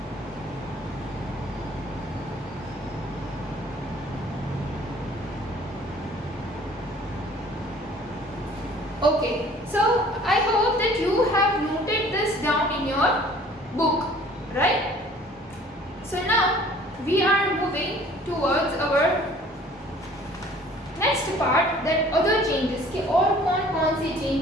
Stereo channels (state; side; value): normal; both; correlation 0.52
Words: Okay, so I hope that you have noted this down in your book, right? So now we are moving towards our next part, that other changes कि और कौन-कौन से